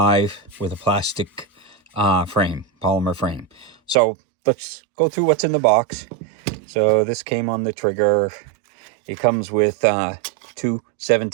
with a plastic polymer frame. So let's go through what's in the box. So this came on the trigger. It comes with two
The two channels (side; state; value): left; drops out; at 4.0 s